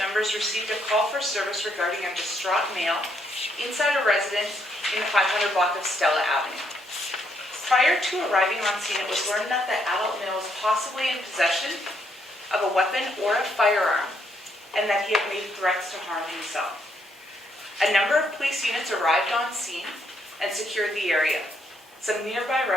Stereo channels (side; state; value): both; normal; correlation 0.74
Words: received a call for service regarding a distraught male inside a residence in the 500 block of Stella Avenue. Prior to arriving on scene, it was learned that the adult male was possibly in possession of a weapon or a firearm, and that he had made threats to harm himself. A number of police units arrived on scene and secured the area. Some nearby